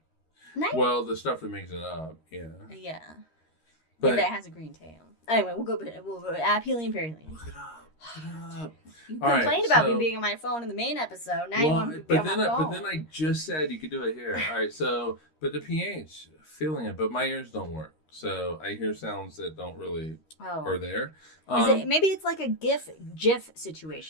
Nice. Well, the stuff that makes it up, yeah. Yeah, but that has a green tail. Anyway, we'll go aphelion, perihelion. Look it up. You complained about me being on my phone in the main episode. Now you want me to be on my phone. But then I just said you could do it here. All right, so but the pH, feeling it, but my ears don't work, so I hear sounds that don't really are there. Maybe it's like a GIF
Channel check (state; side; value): late; right; 3.1 ms